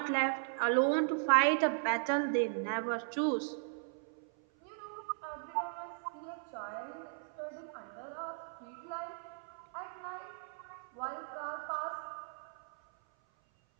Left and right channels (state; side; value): silent; left; 53 dB below the other